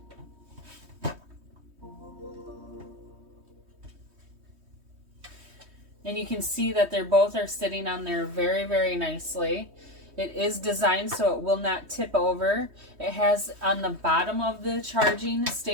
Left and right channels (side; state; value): left; late; 3.2 ms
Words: And you can see that they're both are sitting on there very, very nicely. It is designed so it will not tip over. It has on the bottom of the charging